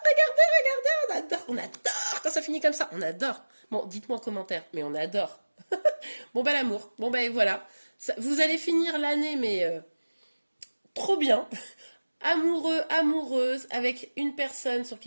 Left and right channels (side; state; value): both; inverted; correlation -1.00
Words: Regardez, on adore quand ça finit comme ça. On adore. Bon, dites-moi en commentaire, mais on adore. Bon, bah, l'amour. Bon, bah, voilà. Ça, vous allez finir l'année, mais trop bien. Amoureux, amoureuse, avec une personne sur